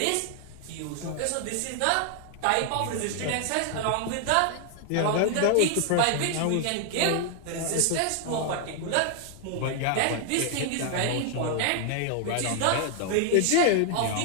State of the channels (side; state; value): both; different; correlation 0.00